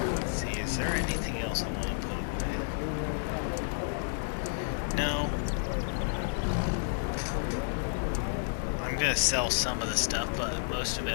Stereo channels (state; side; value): silent; right; digital silence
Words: Let's see, is there anything else I want to put away? No. I'm gonna sell some of the stuff, but most of it